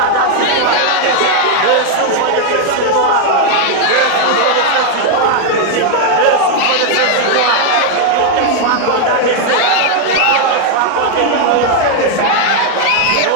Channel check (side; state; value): both; different; correlation 0.00